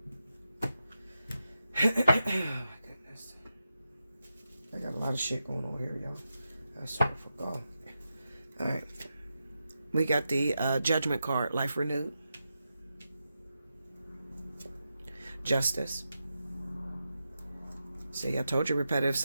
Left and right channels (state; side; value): inverted; both; correlation -0.89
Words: my goodness. I got a lot of shit going on here, y'all. I sort of forgot. Alright. We got the Judgment card. Life renewed. Justice. See, I told you repetitive